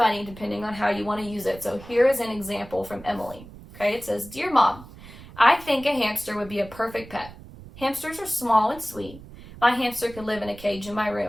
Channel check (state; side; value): noise; right; rumble, 17 dB below the sound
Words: depending on how you want to use it. So here is an example from Emily. Okay, it says, "Dear Mom, I think a hamster would be a perfect pet. Hamsters are small and sweet, My hamster could live in a cage in my